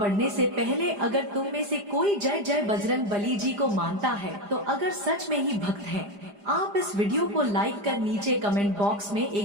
से पहले अगर तुम में से कोई जय जय बजरंग बली जी को मानता है, तो अगर सच में ही भक्त हैं, आप इस वीडियो को लाइक कर नीचे कमेंट बॉक्स में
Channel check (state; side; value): late; left; 4.9 ms